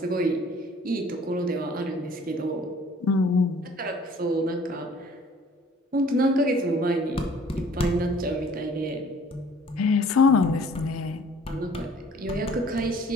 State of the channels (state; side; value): normal; both; correlation 0.54